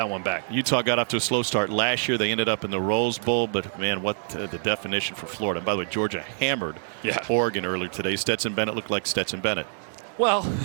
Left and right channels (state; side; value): silent; left; digital silence